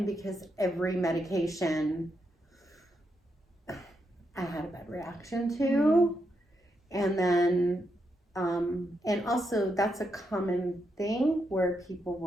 because every medication I had a bad reaction to. And then, and also that's a common thing where people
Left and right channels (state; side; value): normal; both; correlation 0.82